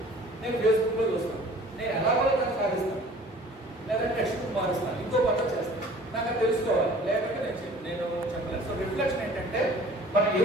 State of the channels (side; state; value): both; normal; correlation 0.49